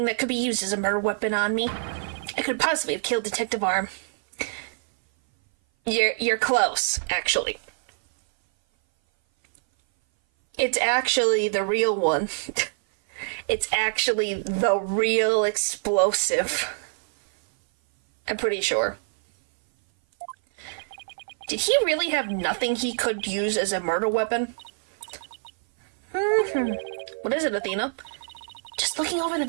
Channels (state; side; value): silent; left; 58 dB below the other